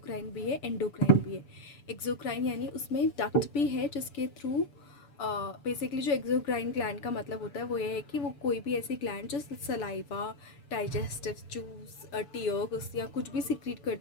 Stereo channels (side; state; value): right; late; 6.9 ms